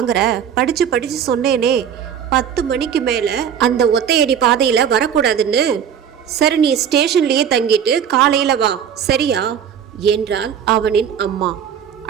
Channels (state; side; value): quieter; left; 8.4 dB